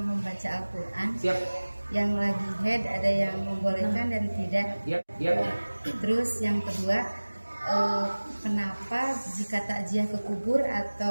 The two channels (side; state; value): both; inverted; correlation -1.00